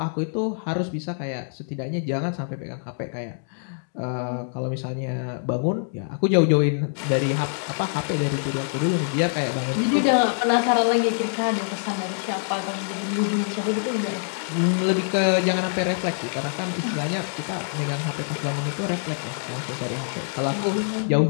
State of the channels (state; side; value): silent; right; digital silence